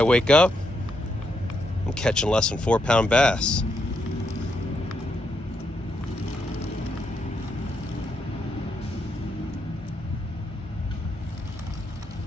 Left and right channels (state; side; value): normal; both; correlation 0.79